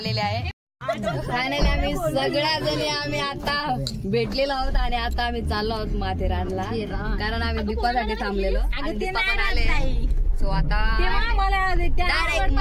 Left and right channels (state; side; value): identical; both; correlation 1.00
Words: आहे. फायनली आम्ही सगळ्या जणी आम्ही आता भेटलेलो आहोत आणि आता आम्ही चाललो आहोत माथेरानला कारण आम्ही दीपासाठी थांबलेलो आणि दीपा पण आले. सो आता डायरेक्ट